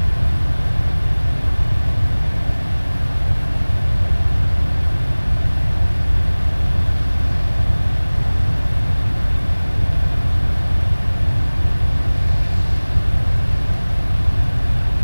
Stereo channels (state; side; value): inverted; both; correlation -1.00